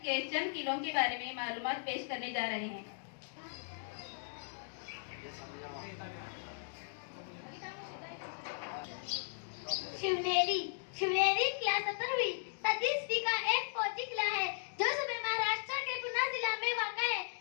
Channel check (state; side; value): silent; right; digital silence